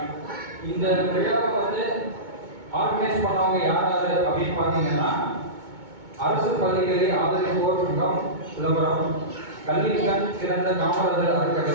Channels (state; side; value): late; left; 2.2 ms